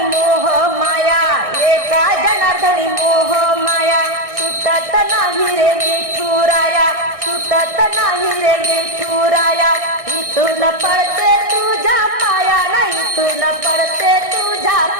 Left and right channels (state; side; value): late; left; 1.6 ms